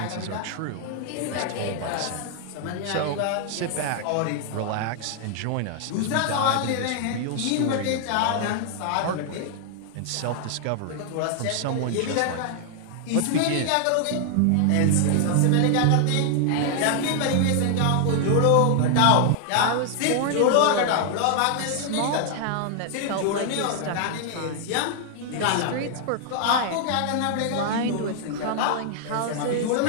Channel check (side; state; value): both; different; correlation 0.00